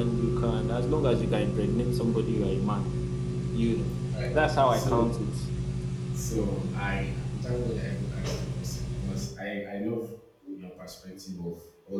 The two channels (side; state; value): both; identical; correlation 1.00